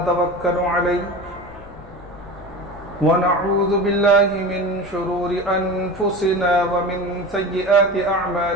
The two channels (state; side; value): noise; left; rumble, 19 dB below the sound